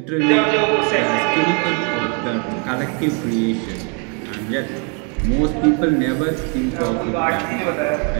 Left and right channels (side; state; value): left; quieter; 36.5 dB